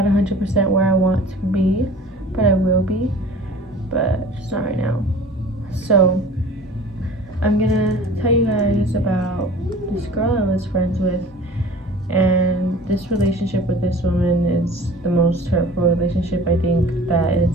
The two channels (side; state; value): both; normal; correlation 0.44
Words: 100% where I want to be, but I will be, but just not right now. So I'm gonna tell you guys about this girl I was friends with, and this relationship with this woman is the most hurtful relationship I think that